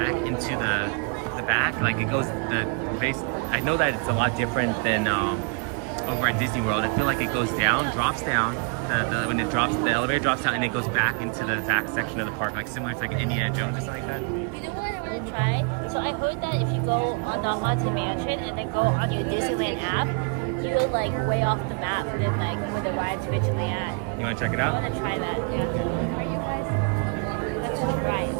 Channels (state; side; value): quieter; left; 35.3 dB